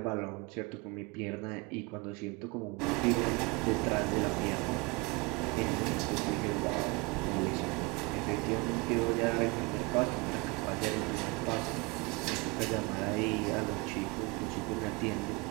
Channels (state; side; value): quieter; left; 26.9 dB